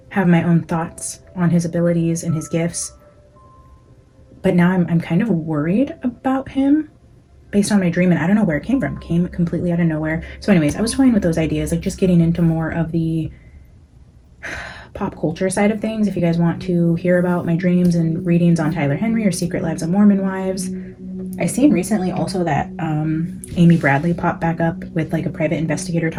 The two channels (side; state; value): both; identical; correlation 1.00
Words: have my own thoughts on his abilities and his gifts, but now I'm kind of worried about him based on my dream, and I don't know where it came from. It came completely out of nowhere. So anyways, I was toying with those ideas, like just getting into more of the pop culture side of things. If you guys want to hear about my dreams and readings on Tyler Henry or Secret Lives of Mormon Wives. I seen recently also that Amy Bradley popped back up with like a private investigator